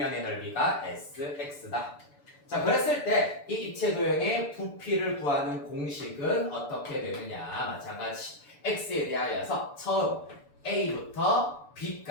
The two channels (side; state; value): right; late; 6.9 ms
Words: 넓이가 sx다. 자, 그랬을 때 이 입체 도형의 부피를 구하는 공식은 어떻게 되느냐. 마찬가지 x에 대하여서 처음 a부터